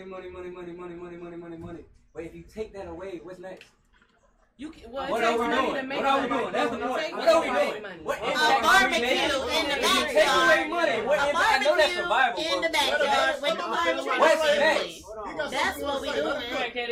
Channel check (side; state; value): both; identical; correlation 1.00